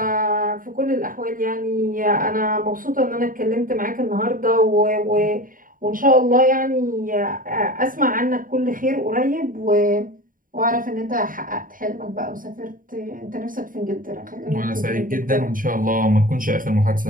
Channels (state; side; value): late; left; 0.40 ms